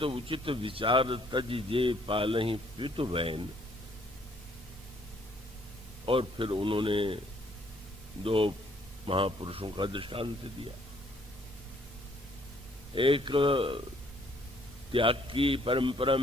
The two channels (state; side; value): normal; both; correlation 0.64